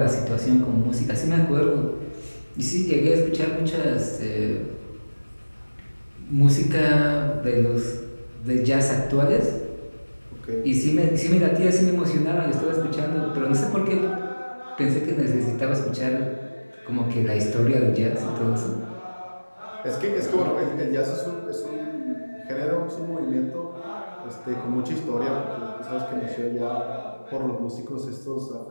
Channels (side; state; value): both; inverted; correlation -1.00